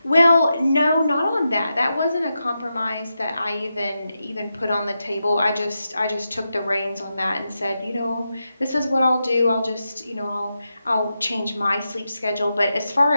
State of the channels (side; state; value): both; inverted; correlation -0.88